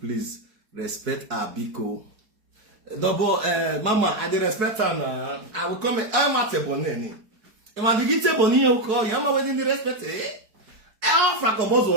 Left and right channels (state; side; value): late; left; 4.6 ms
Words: respect her biko. Double, Mama, I dey respect her now. I will come. I'm at a bonnet. If I begin to bonnet, you call. I'm wedding the respect. I offer a